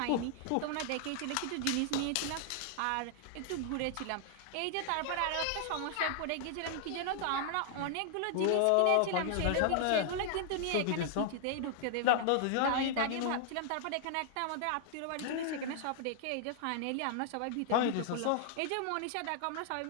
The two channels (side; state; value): both; different; correlation 0.00